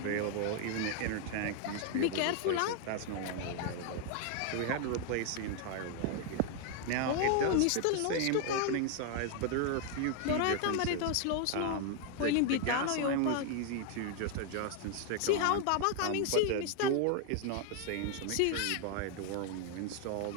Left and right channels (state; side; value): different; both; correlation 0.01